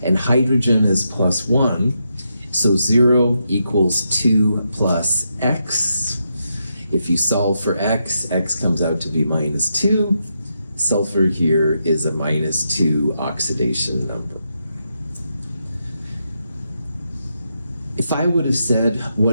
And hydrogen is +1. So 0 equals 2 plus x. If you solve for x, x comes out to be -2. Sulfur here is a -2 oxidation number. If I would have said,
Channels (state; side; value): inverted; both; correlation -0.83